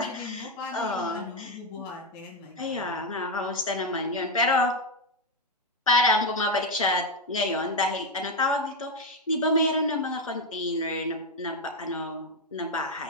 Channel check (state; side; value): normal; both; correlation 0.05